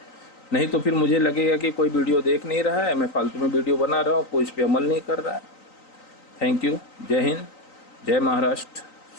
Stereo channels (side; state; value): right; late; 3.9 ms